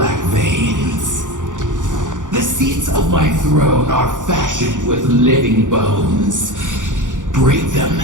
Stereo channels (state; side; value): late; left; 0.87 ms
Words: veins. The seats of my throne are fashioned with living bones. Break them,